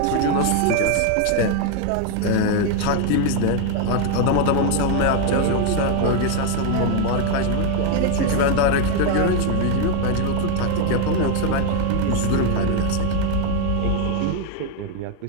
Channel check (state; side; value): different; both; correlation 0.01